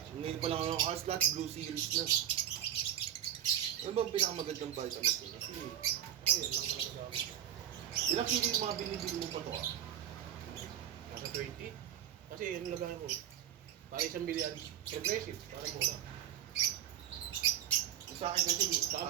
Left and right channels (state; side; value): quieter; left; 10.7 dB